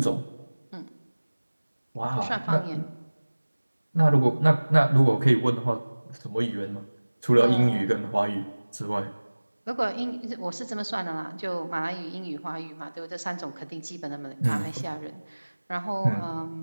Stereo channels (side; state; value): both; inverted; correlation -1.00